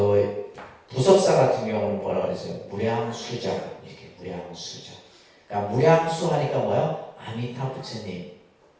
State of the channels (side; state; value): both; identical; correlation 1.00